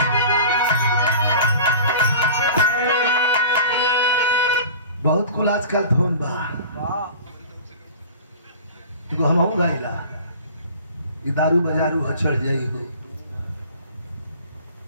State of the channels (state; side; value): inverted; both; correlation -0.40